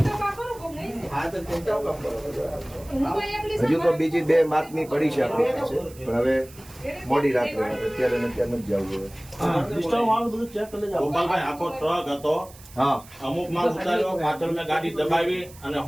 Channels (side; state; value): right; noise; hiss, 21 dB below the sound